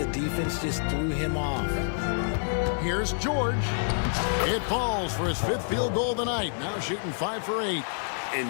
defense just threw him off. Here's George. It falls for his 5th field goal of the night. Now shooting 5 for 8. And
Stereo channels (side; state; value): right; silent; digital silence